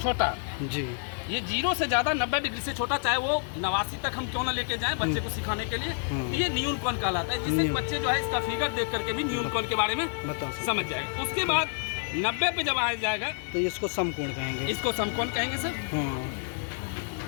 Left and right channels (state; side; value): silent; right; 55 dB below the other